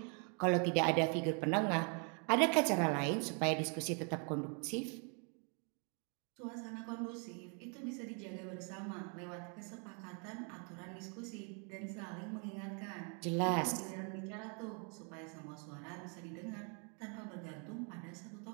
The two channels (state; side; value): quieter; left; 38.8 dB